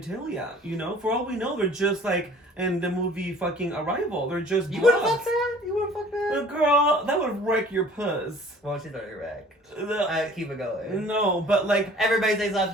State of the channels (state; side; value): normal; both; correlation 0.51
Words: You know, for all we know, they're just like in the movie fucking Arrival. They're just. You wouldn't fuck that. You wouldn't fuck that. Girl, that would wreck your puss. Well, she's already wrecked. Keep it going. No, but like everybody say